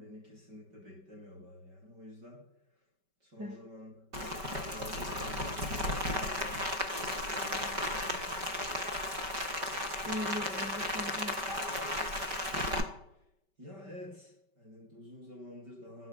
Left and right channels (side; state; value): left; late; 5.2 ms